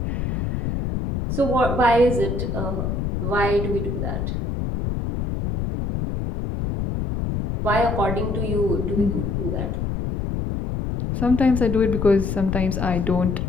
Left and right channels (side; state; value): left; noise; rumble, 2 dB below the sound